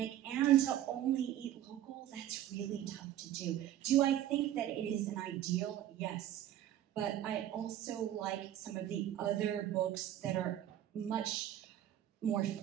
and to only eat local. That's really tough to do. Do I think that it is an ideal? Yes. But I also like some of the other books that are much more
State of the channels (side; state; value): left; quieter; 12.0 dB